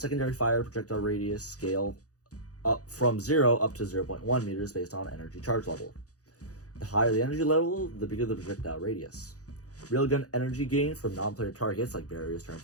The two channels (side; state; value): right; late; 0.67 ms